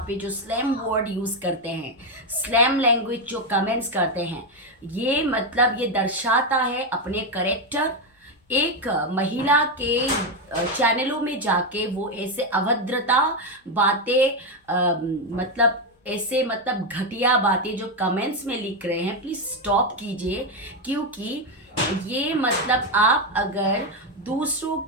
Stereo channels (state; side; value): normal; both; correlation 0.07